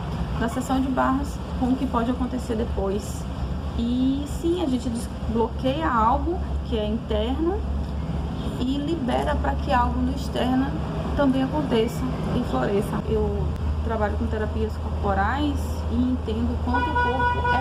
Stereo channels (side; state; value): both; identical; correlation 1.00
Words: da sessão de barras com o que pode acontecer depois. E sim, a gente desbloqueia algo que é interno e libera para que algo no externo também aconteça e floresça. Eu trabalho com terapias corporais e entendo quanto o corpo